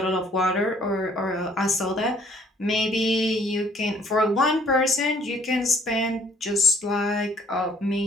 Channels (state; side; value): normal; both; correlation 0.60